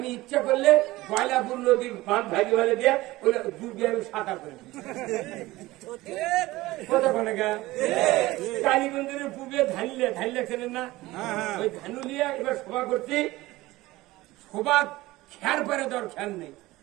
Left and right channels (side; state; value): left; quieter; 18.7 dB